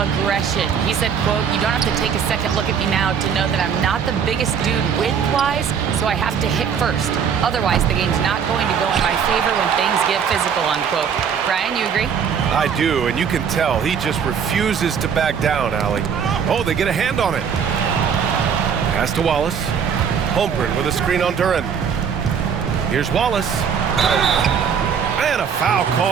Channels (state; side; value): quieter; left; 7.2 dB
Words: He said, quote, "You don't have to take a second look at me now to know that I'm not the biggest dude width-wise, so I have to hit first. Otherwise, the game's not going to go in my favor when things get physical," unquote. Brian, you agree? I do, and you can tell he just refuses to back down, Allie. Oh, they get a hand on it. Pass to Wallace. Holmgren with a screen on Duran. Here's Wallace. And a foul